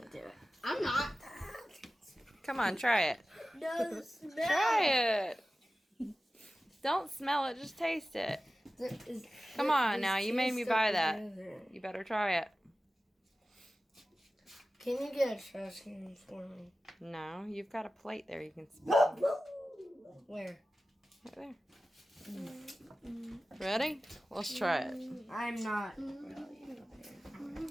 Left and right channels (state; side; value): normal; both; correlation 0.95